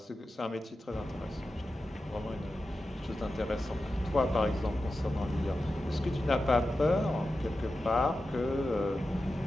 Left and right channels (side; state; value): both; normal; correlation 0.92